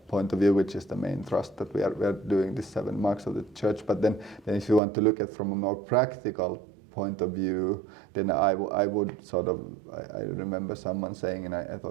point of view, which is the main thrust that we are doing these 7 marks of the church. But then if you want to look at from a more practical point of view, then I would sort of, I remember someone saying, and I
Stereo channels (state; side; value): drops out; left; at 4.8 s